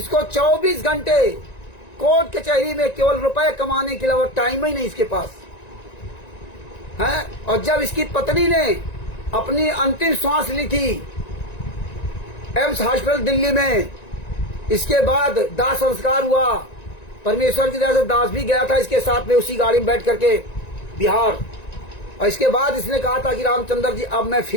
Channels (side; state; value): right; late; 1.9 ms